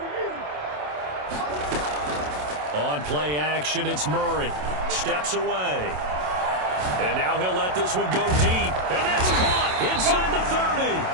On play action, it's Murray. Steps away. And now he'll let this one go deep. And that's caught inside the 30.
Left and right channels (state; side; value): late; left; 27 ms